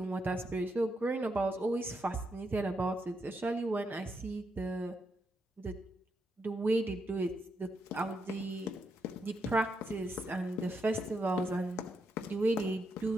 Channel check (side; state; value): both; normal; correlation 0.81